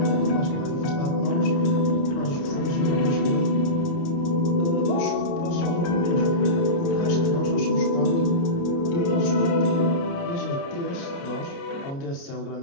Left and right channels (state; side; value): late; right; 29 ms